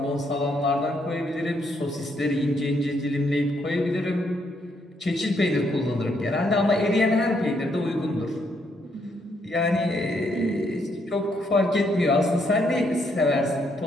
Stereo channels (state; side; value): normal; both; correlation 0.74